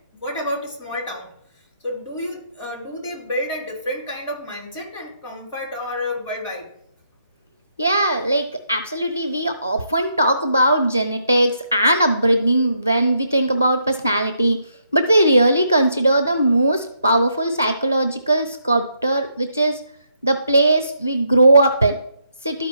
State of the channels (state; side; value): inverted; both; correlation -0.76